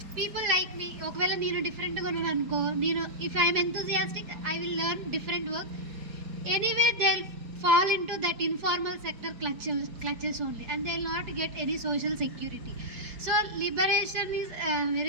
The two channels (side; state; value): left; late; 4.7 ms